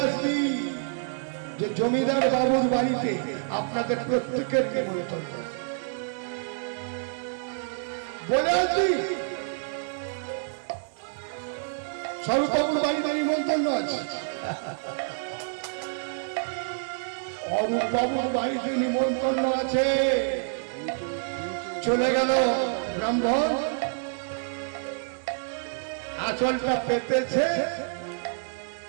আসবি যে জমিদার বাবুর বাড়িতে আপনাদের প্রত্যেকের নিমন্ত্রণ, বলে আসবি স্বরূপবাবুর বাড়িতে নিমন্ত্রণ আছে, অরূপবাবুর বাড়িতে নিমন্ত্রণ আছে। চলে গেল ব্রাহ্মণ, আঁচলটা পেতেছে,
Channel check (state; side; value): silent; left; 60 dB below the other